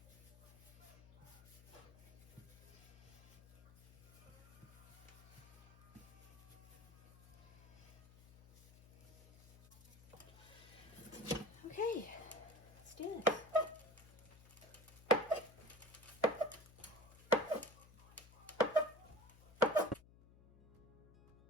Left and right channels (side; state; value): left; noise; hum, 23 dB below the sound